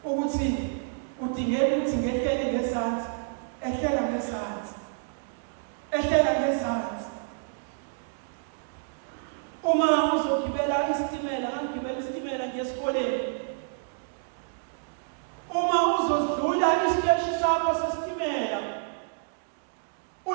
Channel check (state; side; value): silent; left; digital silence